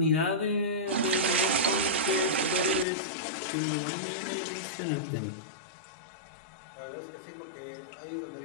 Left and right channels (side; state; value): right; drops out; at 2.9 s